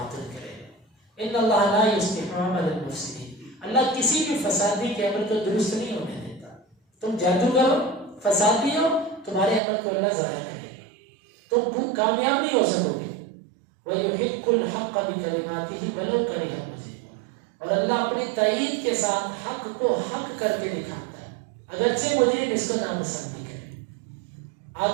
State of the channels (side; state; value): left; drops out; at 9.6 s